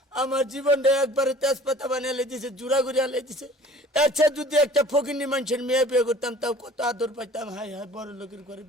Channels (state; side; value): normal; both; correlation 0.49